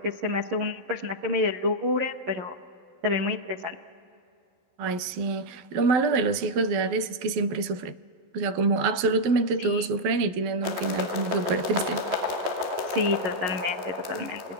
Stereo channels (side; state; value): left; late; 12 ms